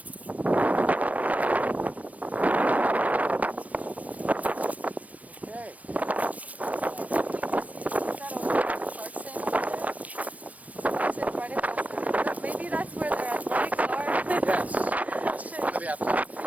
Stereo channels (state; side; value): late; left; 0.069 ms